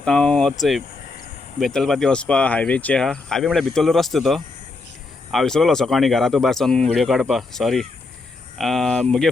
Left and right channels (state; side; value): quieter; right; 3.6 dB